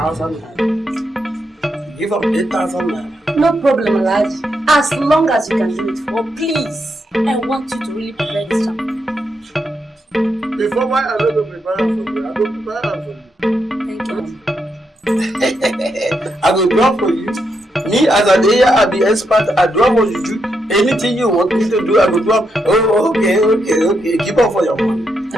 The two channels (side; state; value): both; normal; correlation 0.81